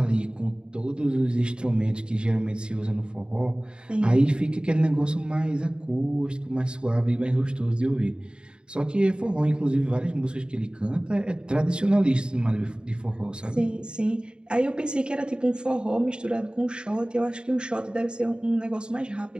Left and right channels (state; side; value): late; left; 0.051 ms